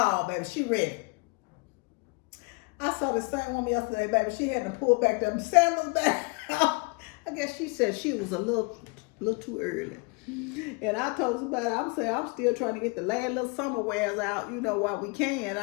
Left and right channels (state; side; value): quieter; right; 30.2 dB